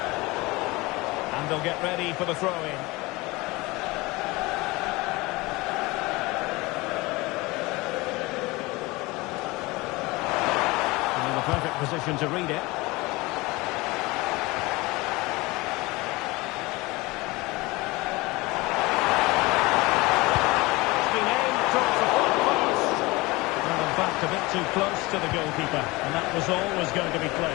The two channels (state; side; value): quieter; right; 22.5 dB